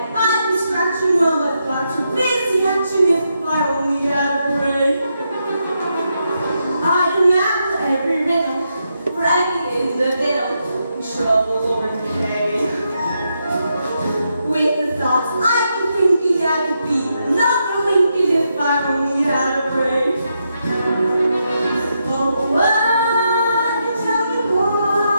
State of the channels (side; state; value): both; inverted; correlation -0.82